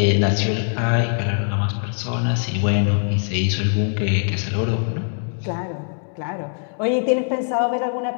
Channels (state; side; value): silent; right; 64 dB below the other